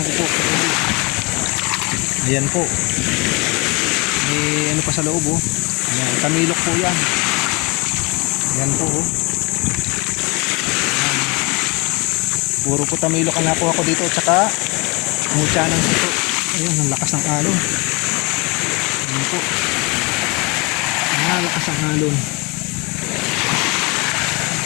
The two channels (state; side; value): quieter; right; 27.9 dB